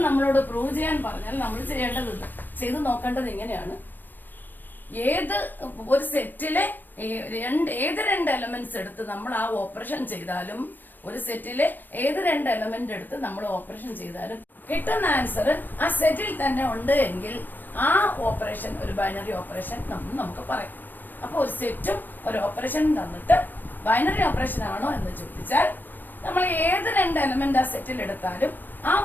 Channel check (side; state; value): right; late; 0.091 ms